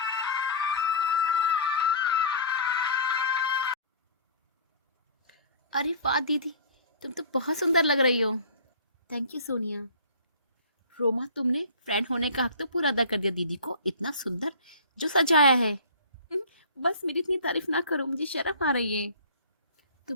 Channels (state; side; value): inverted; both; correlation -0.41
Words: अरे वाह दीदी, तुम तो बहुत सुंदर लग रही हो। Thank you Sonia. रोमा, तुमने फ्रेंड होने का हक तो पूरा अदा कर दिया दीदी को, इतना सुंदर जो सजाया है। बस मेरी इतनी तारीफ ना करो, मुझे शर्म आ रही है।